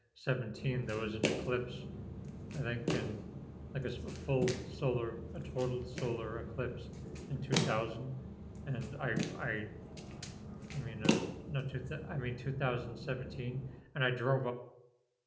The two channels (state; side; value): identical; both; correlation 1.00